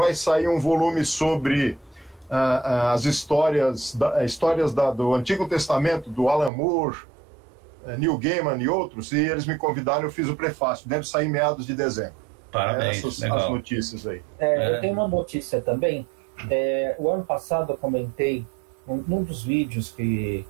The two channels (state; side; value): drops out; left; at 6.5 s